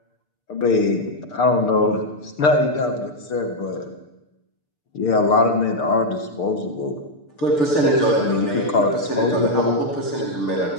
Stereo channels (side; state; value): right; late; 6.8 ms